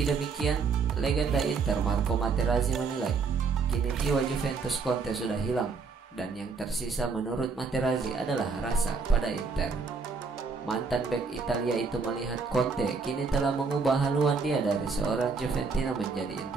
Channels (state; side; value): quieter; left; 4.8 dB